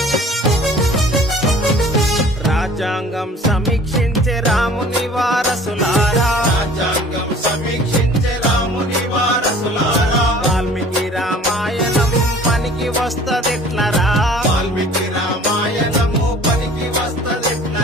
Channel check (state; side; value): normal; both; correlation 0.49